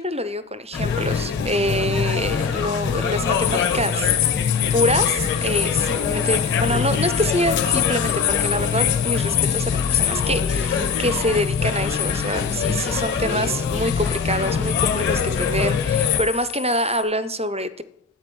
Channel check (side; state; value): right; quieter; 4.1 dB